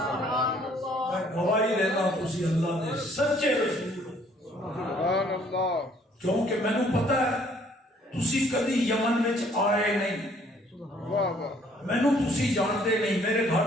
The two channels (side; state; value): both; normal; correlation 0.61